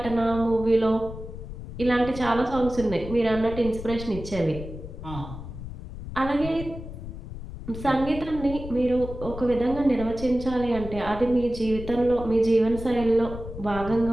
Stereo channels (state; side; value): noise; left; rumble, 10 dB below the sound